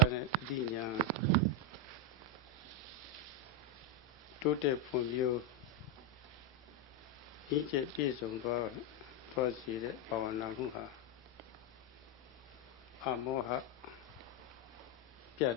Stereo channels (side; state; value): both; normal; correlation 0.05